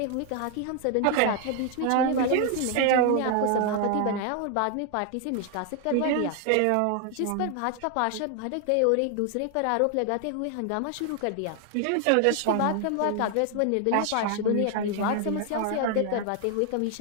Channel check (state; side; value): different; both; correlation 0.00